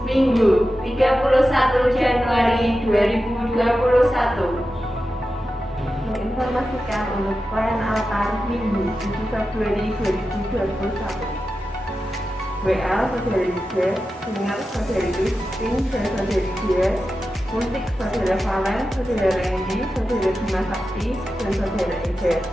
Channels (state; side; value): normal; both; correlation 0.92